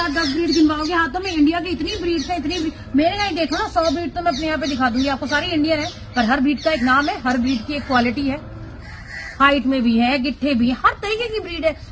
10 ब्रीड गिनवाओगे हाथों में, इंडिया की इतनी ब्रीड है, इतनी ब्रीड। मेरे यहाँ देखो ना 100 ब्रीड तो मैं अपने यहाँ पे दिखा दूंगी आपको, सारी इंडियन है, पर हर ब्रीड का एक नाम है, हर ब्रीड की एक क्वालिटी है, हाइट में भी है, गिट्ठे भी है, हर तरीके की ब्रीड है,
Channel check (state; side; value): identical; both; correlation 1.00